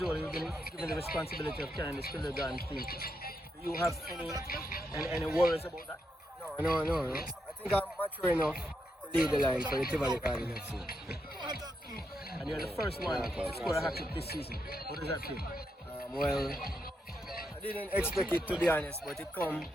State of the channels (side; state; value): both; normal; correlation 0.82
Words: old, you've been given the responsibility of carrying the Tivoli Guns team. Do you have any worries about that? No. I think I'm mature enough to lead the line for the Tivoli Garden FC. And you're the first one to score a hat-trick this season. What does that feel? Well, I didn't expect it, to be honest, but it come